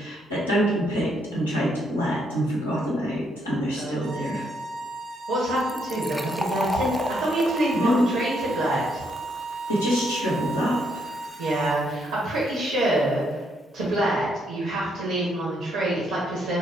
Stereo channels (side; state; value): both; normal; correlation 0.74